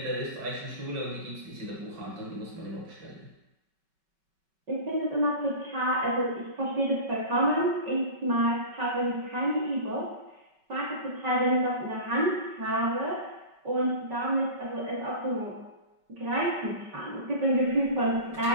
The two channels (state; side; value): late; left; 5.3 ms